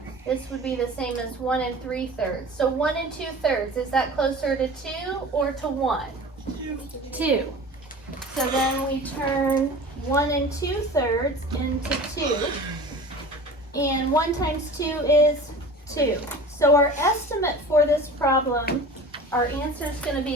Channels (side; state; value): both; normal; correlation 0.38